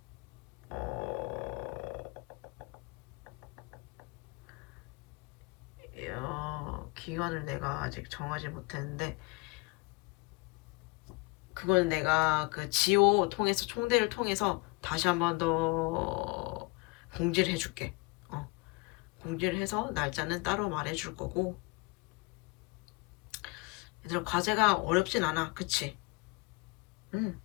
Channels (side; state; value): right; quieter; 26.7 dB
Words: 기간을 내가 아직 정하지 못했는데, 그건 내가 그 지오 통해서 총대를 통해서 다시 한 번 더 공지를 해줄게. 공지를 해서 날짜는 따로 말해줄 거고. 얘들아, 과제가 어렵진 않아, 그치?